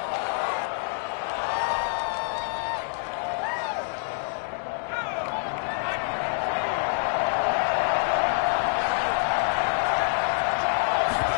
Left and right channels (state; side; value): silent; right; digital silence